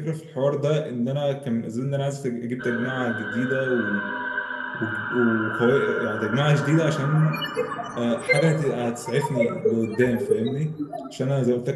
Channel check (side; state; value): both; identical; correlation 1.00